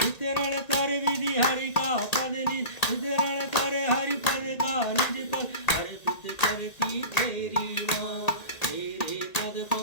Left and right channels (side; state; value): right; late; 1.9 ms